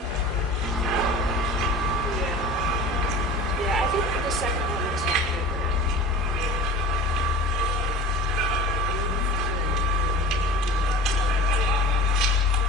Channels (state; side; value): normal; both; correlation 0.38